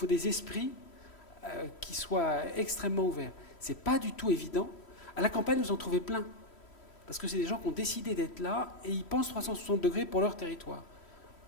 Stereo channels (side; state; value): right; late; 3.1 ms